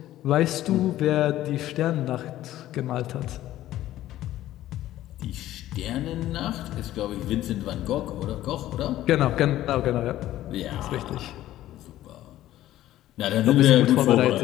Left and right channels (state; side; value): quieter; right; 14.1 dB